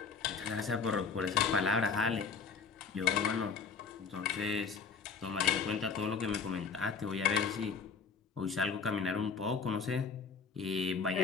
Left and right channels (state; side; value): quieter; right; 5.6 dB